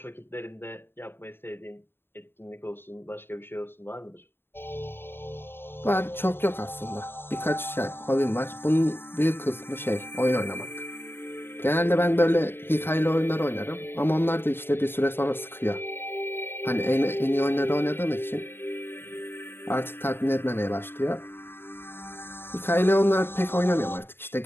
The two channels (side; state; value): right; late; 0.11 ms